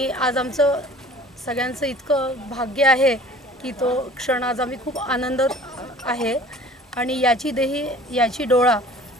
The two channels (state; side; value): normal; both; correlation 0.47